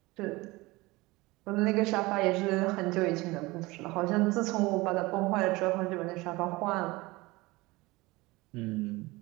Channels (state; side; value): quieter; left; 21.7 dB